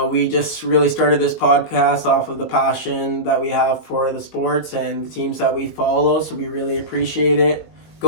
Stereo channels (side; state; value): right; late; 19 ms